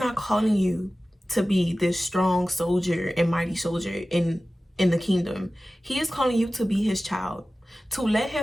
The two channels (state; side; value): normal; both; correlation 0.96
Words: calling you to be this strong soldier and mighty soldier in the kingdom. He is calling you to be his child, to let